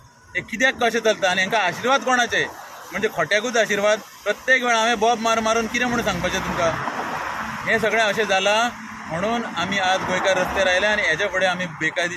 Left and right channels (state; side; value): identical; both; correlation 1.00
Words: हे कित्याक कशें चलता आनी हांकां आशिर्वाद कोणाचे म्हणजे खोट्याकूच आशिर्वाद प्रत्येक वेळा हांवें बॉब मारून कितें म्हणून सांगपाचें तुमकां हें सगळें अशें जालां म्हणून आमी आज गोंयकार रस्त्यार आयले आनी हेच्या फुडें आमी